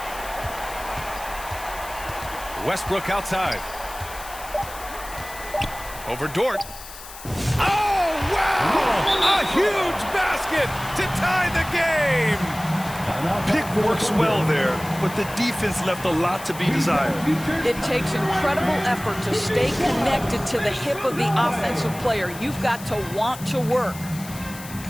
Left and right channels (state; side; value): noise; left; hiss, 15 dB below the sound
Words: Westbrook outside. Over Dort. Oh, wow! A huge basket to tie the game! Pick works well there, but the defense left a lot to be desired. It takes incredible effort to stay connected to the hip of the offensive player. You've got to want to work.